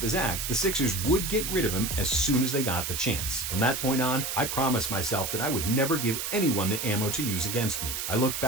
his act, the Sixers would get rid of him as soon as they got the chance. From that point on, I promised myself that I would never give anyone the ammo to use against me. I looked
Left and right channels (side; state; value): right; noise; hiss, 3 dB below the sound